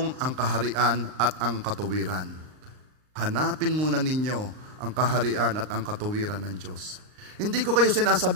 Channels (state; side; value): late; left; 39 ms